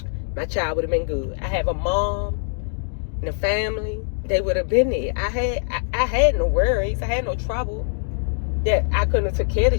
my child would have been good. I have a mom and a family. They would have been there. I had no worries. I had no trouble that I couldn't have took care of the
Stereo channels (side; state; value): right; silent; digital silence